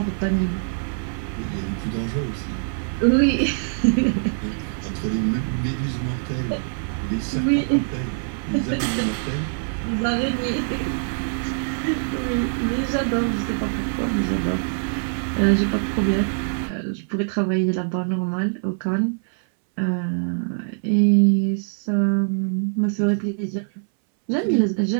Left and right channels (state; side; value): silent; left; 63 dB below the other